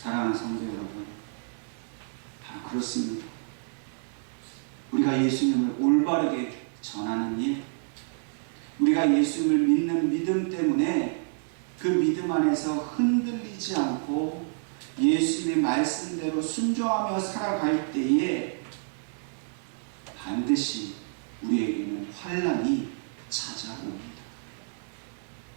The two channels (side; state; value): left; silent; 59 dB below the other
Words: 성도 여러분, 다 그렇습니다. 우리가 예수님을 올바르게 전하는 일, 우리가 예수님을 믿는 믿음 때문에 그 믿음 안에서 흔들리지 않고 예수님의 말씀대로 순종하며 살아갈 때에 반드시 우리에게는 환난이 찾아옵니다.